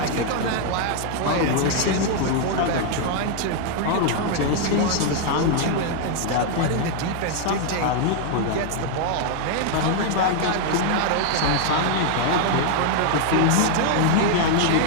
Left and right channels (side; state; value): both; different; correlation 0.00